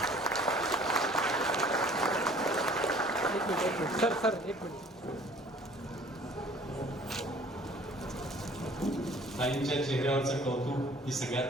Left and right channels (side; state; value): both; normal; correlation 0.52